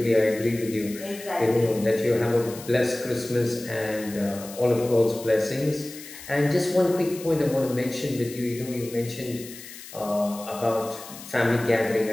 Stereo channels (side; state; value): left; noise; hiss, 15 dB below the sound